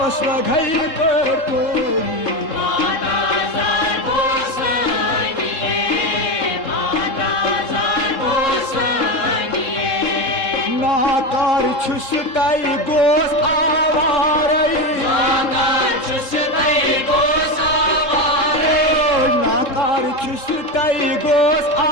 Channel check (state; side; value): late; right; 3.7 ms